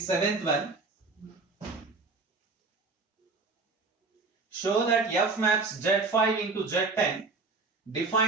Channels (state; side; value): quieter; left; 3.9 dB